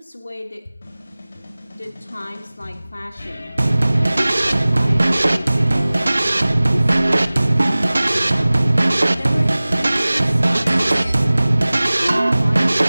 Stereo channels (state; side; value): inverted; both; correlation -0.99